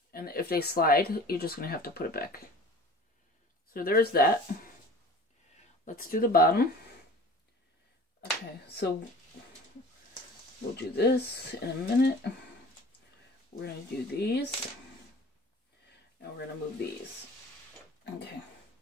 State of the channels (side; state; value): both; normal; correlation 0.43